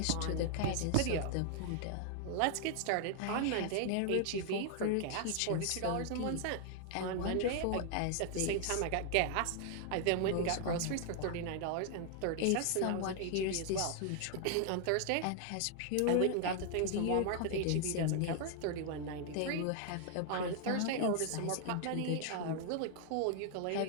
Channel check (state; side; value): different; both; correlation 0.00